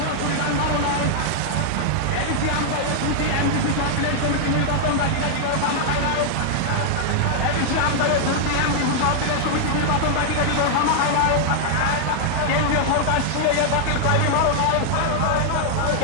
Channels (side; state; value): both; different; correlation -0.01